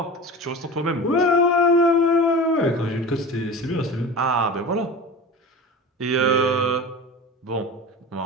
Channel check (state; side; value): normal; both; correlation 0.32